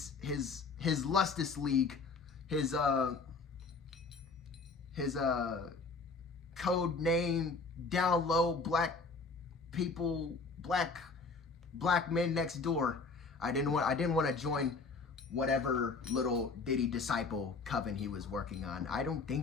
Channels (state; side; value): quieter; right; 4.2 dB